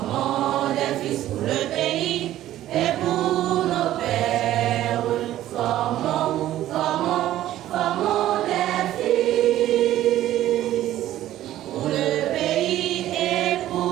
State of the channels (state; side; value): quieter; left; 13.5 dB